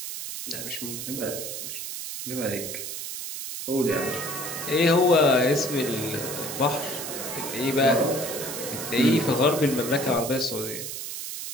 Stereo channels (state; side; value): noise; right; hiss, 6 dB below the sound